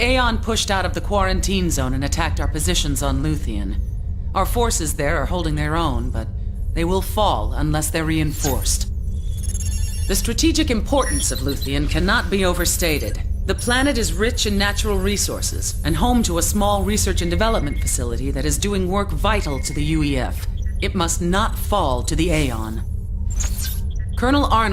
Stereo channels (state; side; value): identical; both; correlation 1.00